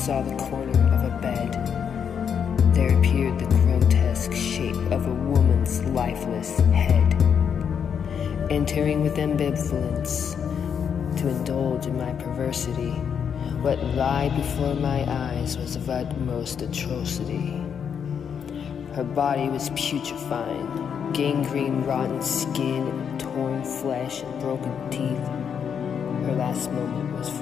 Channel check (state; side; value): quieter; right; 7.5 dB